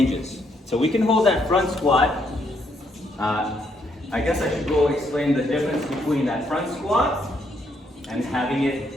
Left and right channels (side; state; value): both; normal; correlation 0.74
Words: So we can hold that front squat. I guess I should go explain the difference between that front squat and having